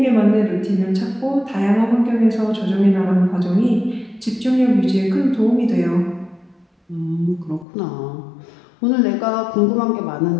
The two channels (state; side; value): drops out; right; at 7.7 s